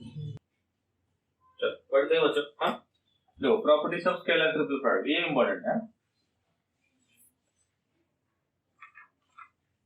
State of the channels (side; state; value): both; identical; correlation 1.00